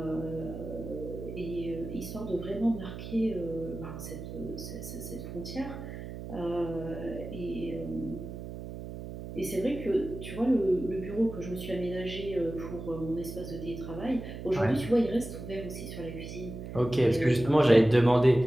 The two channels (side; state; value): right; noise; hum, 9 dB below the sound